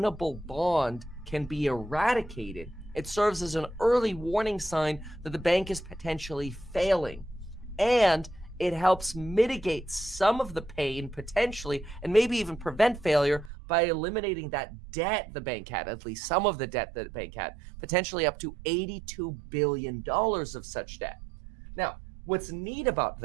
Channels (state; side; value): drops out; left; at 13.5 s